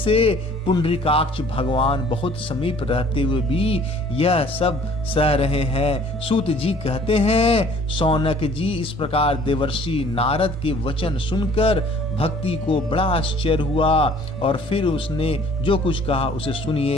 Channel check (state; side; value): normal; both; correlation 0.54